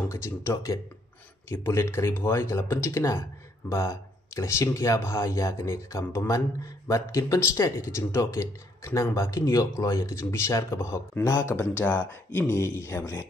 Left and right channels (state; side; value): normal; both; correlation 0.69